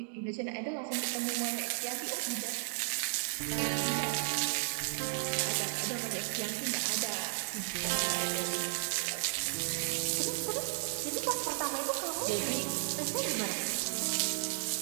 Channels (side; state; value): left; silent; digital silence